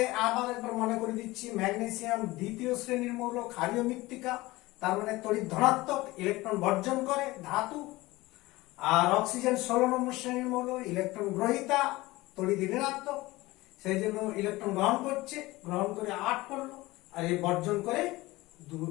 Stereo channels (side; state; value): right; quieter; 19.9 dB